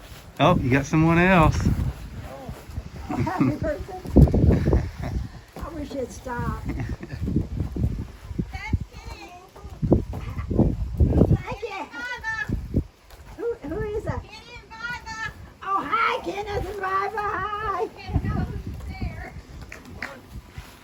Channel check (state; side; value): identical; both; correlation 1.00